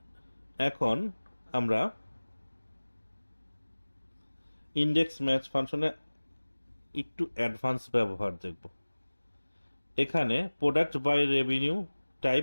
এখন আমরা ইনডেক্স ম্যাচ ফাংশনে একটু অ্যাডভান্স ব্যবহার দেখব। এখানে product by revenue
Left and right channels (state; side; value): inverted; both; correlation -1.00